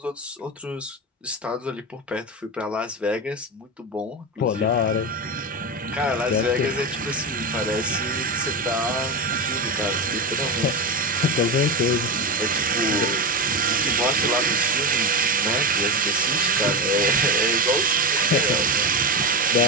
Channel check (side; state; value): both; normal; correlation 0.18